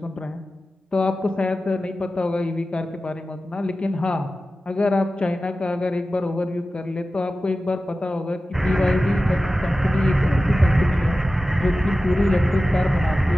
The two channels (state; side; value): normal; both; correlation 0.95